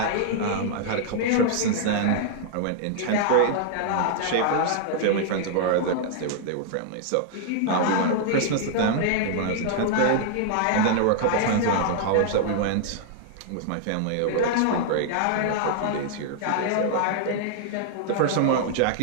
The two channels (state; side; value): different; both; correlation -0.01